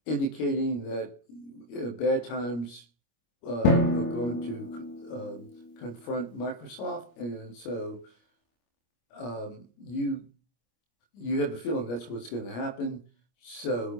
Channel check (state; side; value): late; right; 25 ms